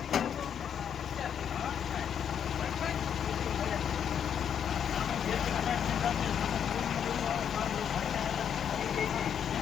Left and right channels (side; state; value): right; quieter; 8.3 dB